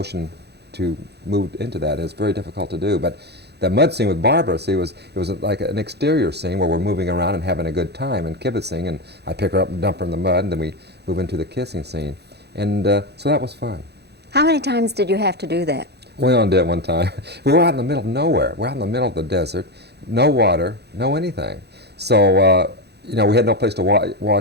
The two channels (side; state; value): left; late; 0.48 ms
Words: to move into that. It's very difficult to do. But that mud scene with Barbara, see, it was like an exterior scene where we're moving around and having a good time and kibitzing, and I pick her up and dump her in the mud, and then we move into the kissing scene. And so that was fun. How many times did you have to do that? We only did it one time. We were out in the middle of nowhere. We're out in the middle of the desert, no water, no anything. So, you know, we had no place to